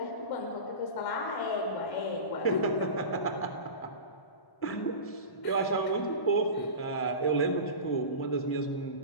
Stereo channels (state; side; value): late; right; 1.0 ms